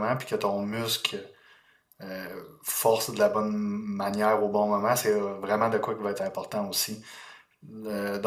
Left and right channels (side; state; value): both; identical; correlation 1.00